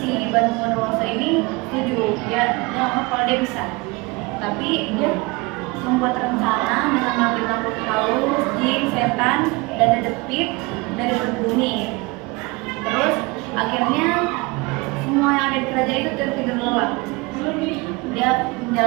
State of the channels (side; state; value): left; quieter; 25.3 dB